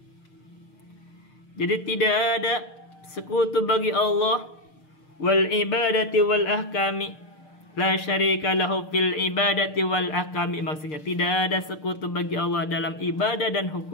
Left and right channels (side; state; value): right; late; 6.6 ms